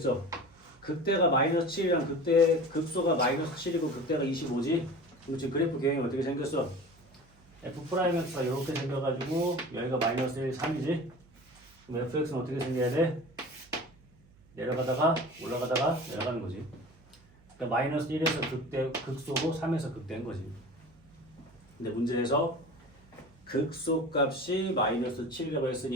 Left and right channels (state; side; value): noise; right; hum, 29 dB below the sound